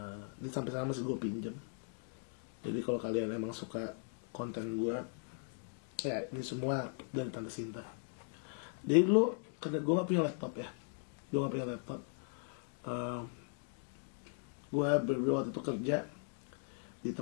Ini sampai sekarang masih gue pinjem. Jadi kalau kalian emang suka konten gue, ya ini semua dari Tante Sinta. Jadi dulu karena gue gak punya laptop ya, gue berdua waktu itu kerja di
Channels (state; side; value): silent; right; 52 dB below the other